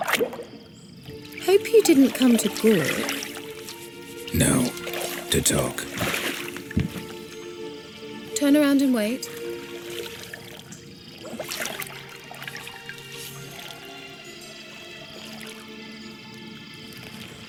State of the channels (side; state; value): both; identical; correlation 1.00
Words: Hope you didn't come to Gore. No. To talk. Turn around and wait.